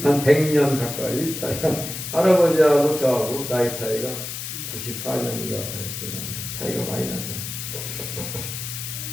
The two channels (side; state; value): left; noise; hiss, 7 dB below the sound